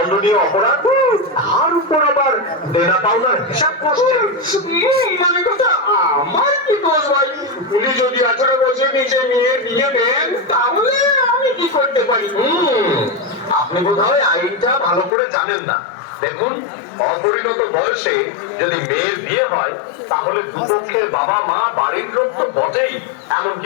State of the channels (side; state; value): right; drops out; at 15.1 s